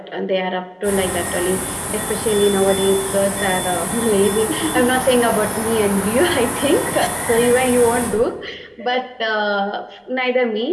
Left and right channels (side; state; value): both; identical; correlation 1.00